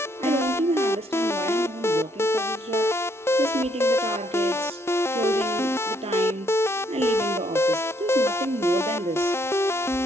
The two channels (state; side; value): normal; both; correlation 0.70